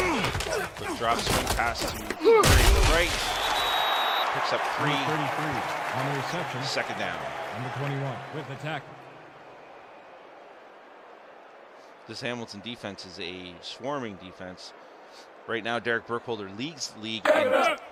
Quick drop, swing pass to right. Picks up 3. Number 33 on the reception. 2nd down. Number 21 with the tackle. This Hamilton defense is a swarming defense. Right now, Derek Burkholder leads the league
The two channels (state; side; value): identical; both; correlation 1.00